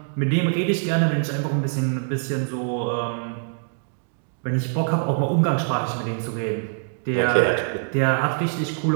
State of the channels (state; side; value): silent; left; digital silence